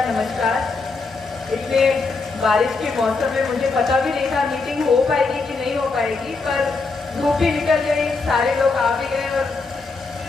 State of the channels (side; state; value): right; quieter; 4.0 dB